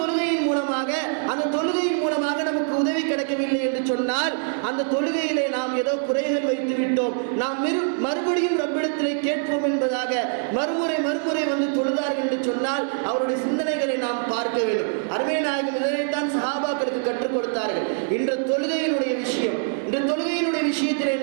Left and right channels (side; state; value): left; silent; 63 dB below the other